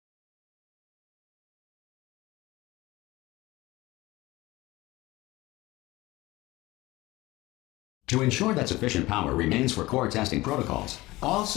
To ensure that sufficient power remains for core testing protocols, all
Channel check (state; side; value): quieter; right; 19.5 dB